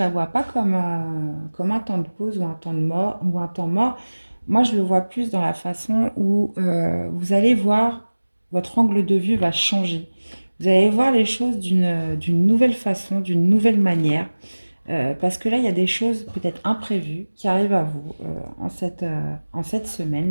vois pas comme un temps de pause ou un temps de mort ou un temps mort. Moi, je le vois plus dans la façon où vous allez voir votre angle de vue va changer. Vous allez voir les choses d'une nouvelle façon, d'une nouvelle manière. Parce que là, il y a des choses peut-être imprévues qui arrivent à vous en cette semaine,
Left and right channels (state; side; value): inverted; both; correlation -1.00